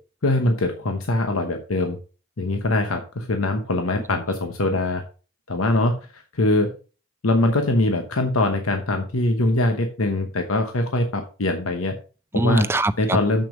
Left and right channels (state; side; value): normal; both; correlation 0.40